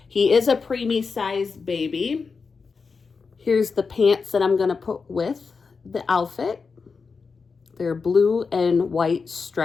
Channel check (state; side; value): quieter; right; 4.9 dB